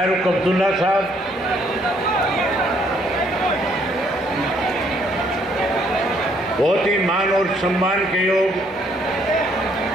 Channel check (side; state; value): both; normal; correlation 0.67